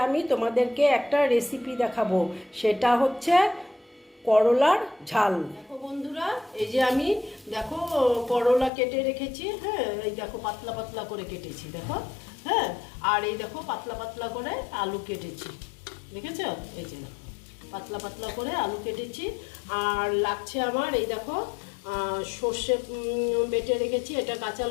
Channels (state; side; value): drops out; right; at 8.7 s